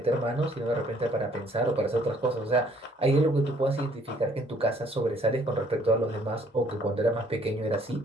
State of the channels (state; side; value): normal; both; correlation 0.61